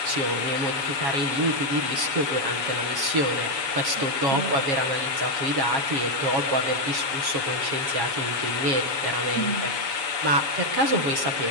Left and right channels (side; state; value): left; late; 7.3 ms